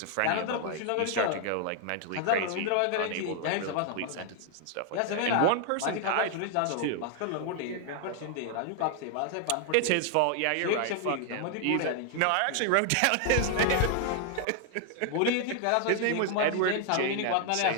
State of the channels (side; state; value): both; different; correlation 0.00